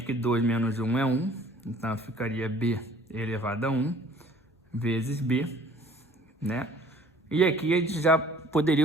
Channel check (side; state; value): both; normal; correlation 0.53